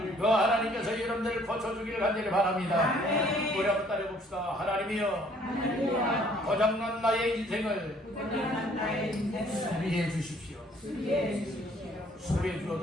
그 하나님께서 여러분들을 고쳐주기를 간절히 바랍니다. 우리 한번 따라해봅시다. 하나님이여 고장난 나의 인생을 수리해 주십시오. 수리해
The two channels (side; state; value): both; normal; correlation 0.60